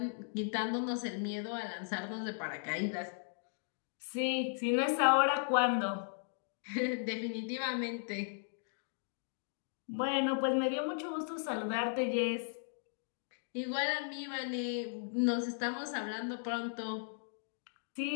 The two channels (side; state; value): right; silent; digital silence